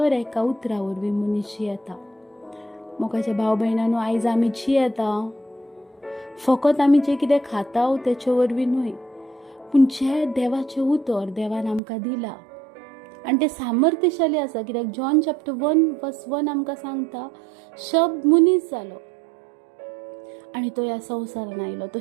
एका उतरा वरवीं मनीस जियेता. मोगाच्या भाव भयणांनो, आयज आमी जियेता फकत आमी जें कितें खाता तेचे वरवीं न्हय, पूण जें देवाचें उतर देवान आमकां दिला आनी तें सामर्थ्यशाली आसा. कित्याक जॉन चॅप्टर 1:1 आमकां सांगता, शब्द मनीस जालो आनी तो ह्या संवसारान आयलो. तो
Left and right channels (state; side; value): drops out; left; at 11.8 s